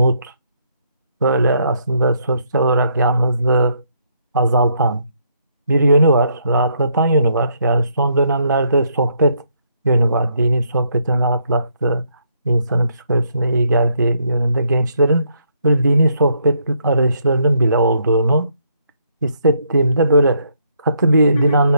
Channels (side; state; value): both; inverted; correlation -0.73